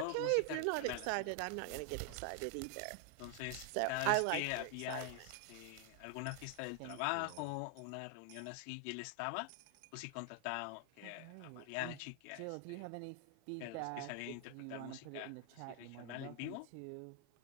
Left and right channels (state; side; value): different; both; correlation 0.00